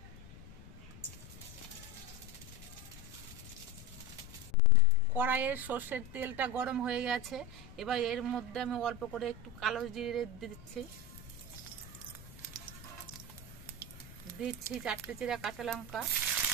কড়াইয়ের সর্ষের তেলটা গরম হয়ে গেছে। এবার এর মধ্যে আমি অল্প করে একটু কালো জিরে দিচ্ছি, দিচ্ছি 4টে চিরা কাঁচা লঙ্কা,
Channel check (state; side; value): noise; left; rumble, 16 dB below the sound